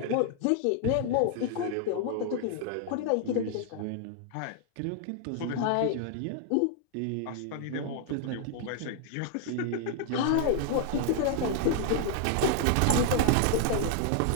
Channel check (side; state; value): both; different; correlation 0.00